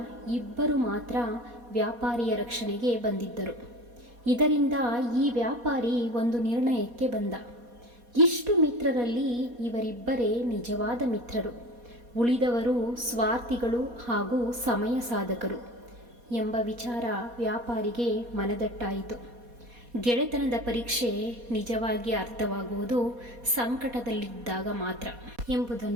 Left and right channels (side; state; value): left; late; 4.2 ms